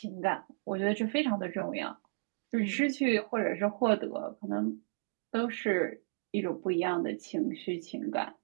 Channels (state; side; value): silent; left; digital silence